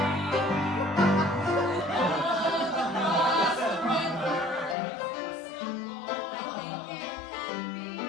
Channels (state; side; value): drops out; right; at 4.8 s